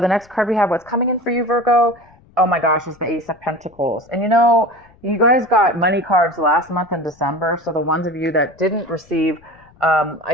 next card we have, what's coming in for you, Virgo? Oh my gosh, is the Ace of Pentacles. And you guys got money cards last month in December. So the ones of you that didn't receive,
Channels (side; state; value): left; noise; rumble, 29 dB below the sound